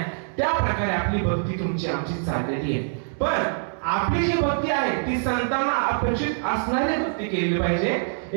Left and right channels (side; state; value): left; silent; digital silence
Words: त्या प्रकारे आपली भक्ती तुमची आमची चाललेली आहे. पण आपली जी भक्ती आहे ती संतांना अपेक्षित असणारी भक्ती केली पाहिजे.